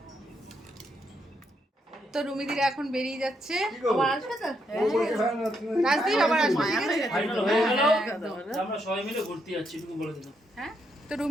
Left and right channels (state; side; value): normal; both; correlation 0.78